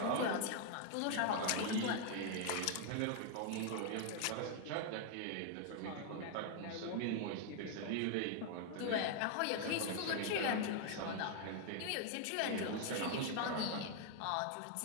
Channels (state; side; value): different; both; correlation 0.00